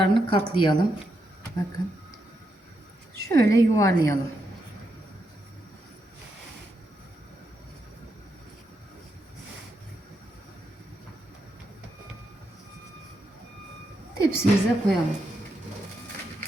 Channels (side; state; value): both; normal; correlation 0.82